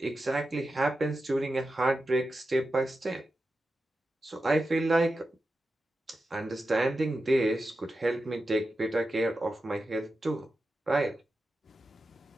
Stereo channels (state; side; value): normal; both; correlation 0.91